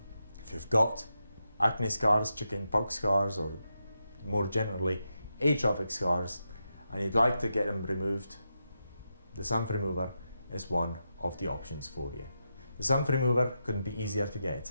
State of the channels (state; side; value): inverted; both; correlation -0.86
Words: if you've got acne scars, chicken pox scars, or more generally atrophic scars, and you'd like to get them removed, the sun remover is one of the options for you. The sun remover couldn't be easier to